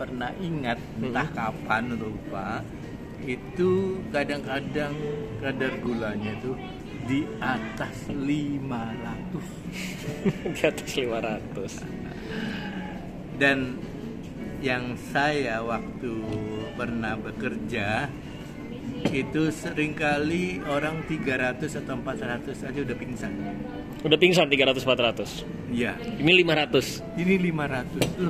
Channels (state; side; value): identical; both; correlation 1.00